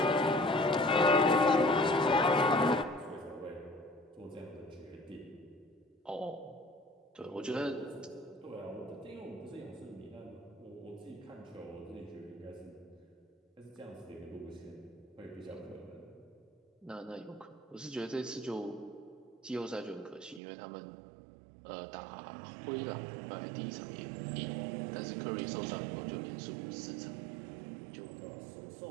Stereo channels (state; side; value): drops out; left; at 20.4 s